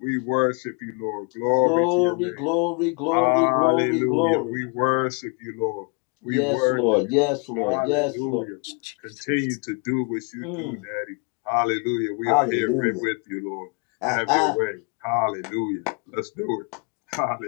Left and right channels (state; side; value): quieter; right; 35.5 dB